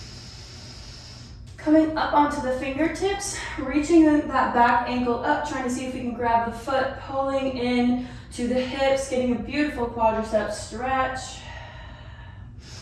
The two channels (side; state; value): both; identical; correlation 1.00